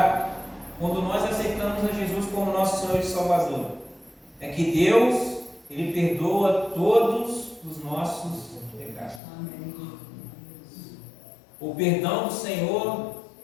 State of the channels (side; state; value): right; drops out; at 9.2 s